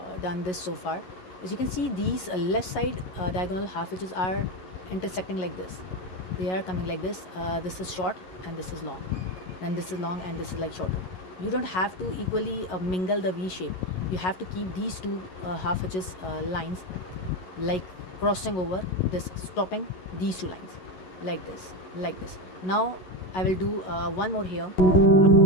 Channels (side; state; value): right; late; 11 ms